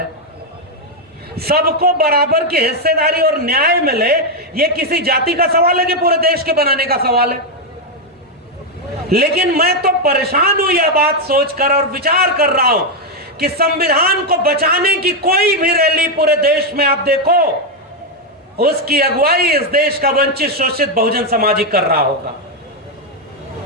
सबको बराबर की हिस्सेदारी और न्याय मिले, यह किसी जाति का सवाल है कि पूरे देश के बनाने का सवाल है? लेकिन मैं तो परेशान हूं यह बात सोचकर और विचार कर रहा हूं कि संविधान को बचाने की कोई भी रैली पूरे देश में आप देखो, उसकी अगुवाई इस देश का वंचित शोषित बहुजन समाज ही कर रहा होगा।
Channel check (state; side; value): normal; both; correlation 0.03